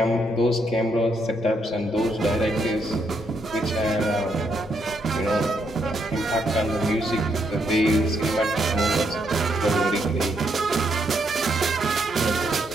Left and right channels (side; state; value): both; normal; correlation 0.76